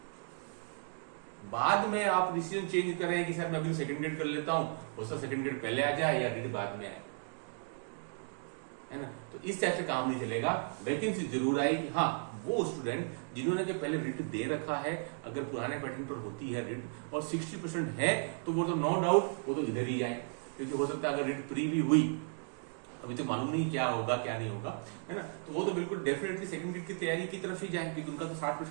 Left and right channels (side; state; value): left; silent; 54 dB below the other